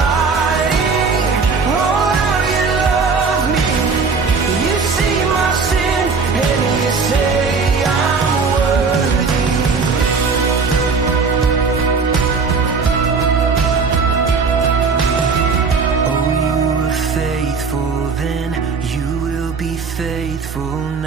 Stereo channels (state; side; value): quieter; left; 4.9 dB